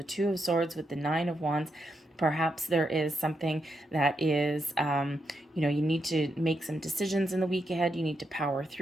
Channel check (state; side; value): normal; both; correlation 0.83